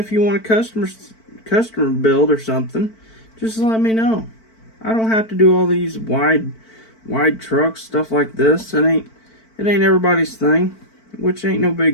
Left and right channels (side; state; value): right; late; 4.5 ms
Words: you want a customer build or something, just let me know. I don't have to do all these wide trucks, stuff like this. It ain't everybody's thing, which ain't no